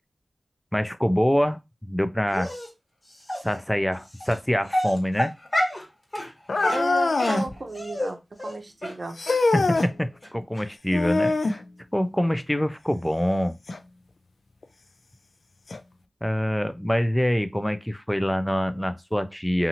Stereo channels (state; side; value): normal; both; correlation 0.98